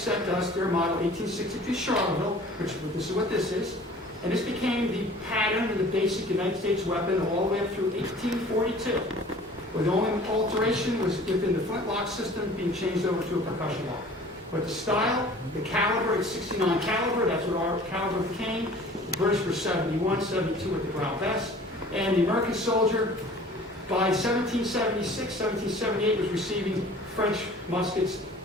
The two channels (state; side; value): normal; both; correlation 0.47